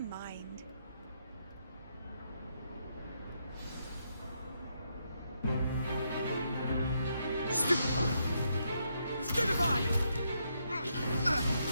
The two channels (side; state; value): both; inverted; correlation -0.78